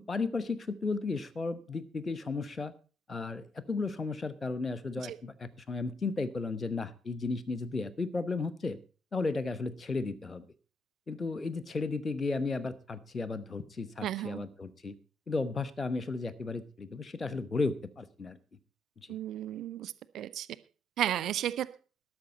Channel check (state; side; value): normal; both; correlation 0.75